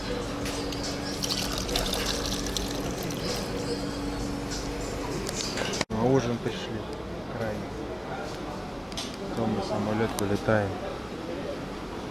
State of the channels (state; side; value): identical; both; correlation 1.00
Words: На ужин пришли. Крайне. Потом на самолет вылетаем.